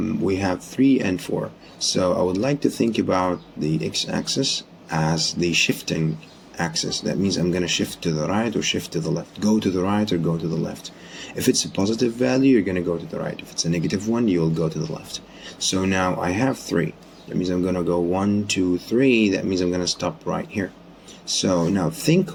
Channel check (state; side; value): identical; both; correlation 1.00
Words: we have 3 and 4. So I would like to think about the x-axis as the shifting axis. That means I'm going to shift to the right or shift to the left, go to the right or go to the left. If it's a positive value, you're going to go to the right. If it's a negative one, you'll go to the left. So now I have 3. That means I'm going to go 1, 2, 3. That means I'm going to stop right here. So now think